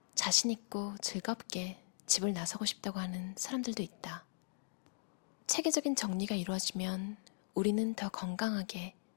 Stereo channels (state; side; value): silent; right; digital silence